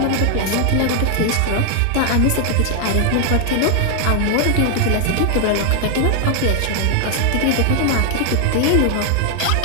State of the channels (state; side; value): different; both; correlation 0.00